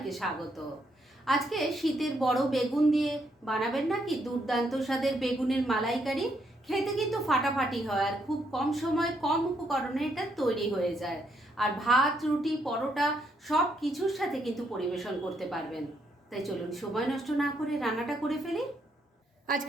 স্বাগত। আজকে শীতের বড় বেগুন দিয়ে বানাবেন নাকি দুর্দান্ত স্বাদের বেগুনের মালাইকারি। খেতে কিন্তু ফাটাফাটি হয় আর খুব কম সময় কম উপকরণে এটা তৈরি হয়ে যায়। আর ভাত, রুটি, পরোটা সব কিছুর সাথে কিন্তু পরিবেশন করতে পারবেন। তাই চলুন সময় নষ্ট না করে রান্নাটা করে ফেলি।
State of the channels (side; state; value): both; normal; correlation 0.75